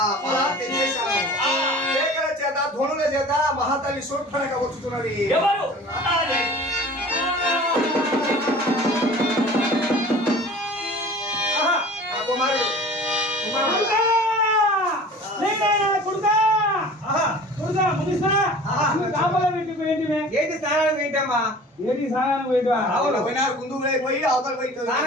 చేత ధ్వనుల చేత మహాతల్లి శూర్పణఖ వచ్చుతున్నది. ఎవరు? కుమారుడు. ఏంటి స్నానానికి పోయింటమ్మా? ఏంటి స్నానానికి పోయి అవతల పోయి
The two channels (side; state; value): both; normal; correlation 0.43